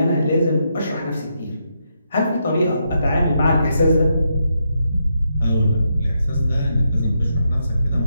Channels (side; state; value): both; inverted; correlation -0.81